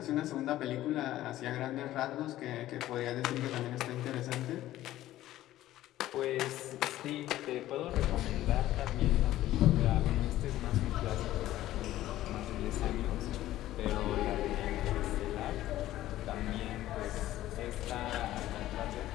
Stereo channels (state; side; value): quieter; right; 14.4 dB